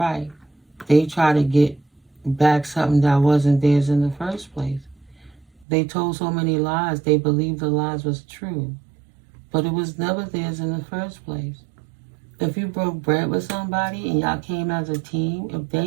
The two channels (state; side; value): drops out; left; at 5.7 s